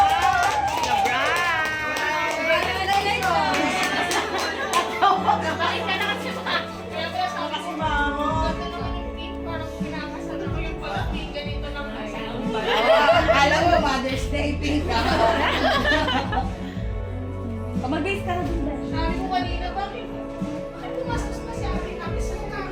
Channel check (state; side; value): identical; both; correlation 1.00